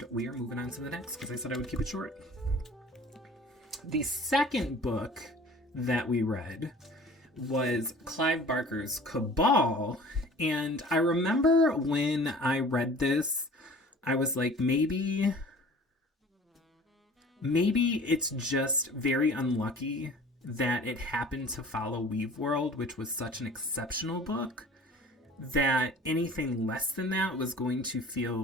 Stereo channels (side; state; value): both; normal; correlation 0.46